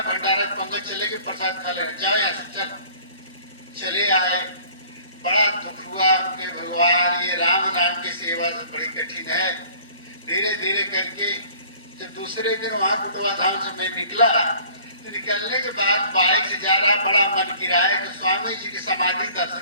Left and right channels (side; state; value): both; inverted; correlation -0.52